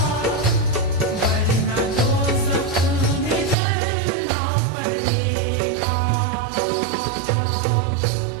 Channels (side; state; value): left; drops out; at 3.6 s